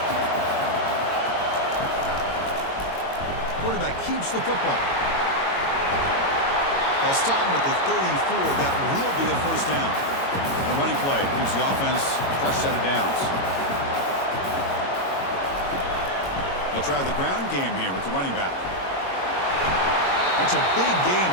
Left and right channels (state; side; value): late; right; 22 ms